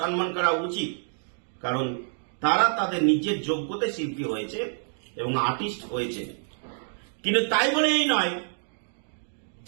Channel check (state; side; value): silent; left; 60 dB below the other